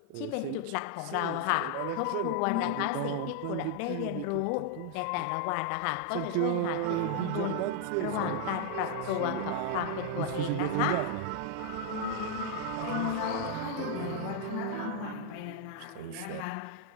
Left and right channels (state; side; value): different; both; correlation 0.00